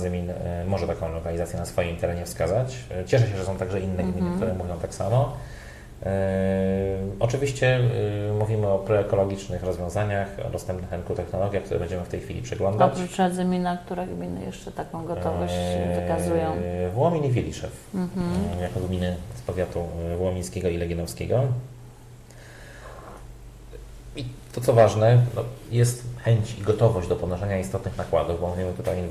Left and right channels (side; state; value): both; identical; correlation 1.00